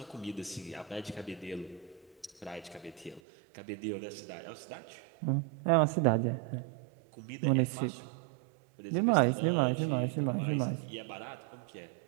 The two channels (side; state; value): left; drops out; at 3.2 s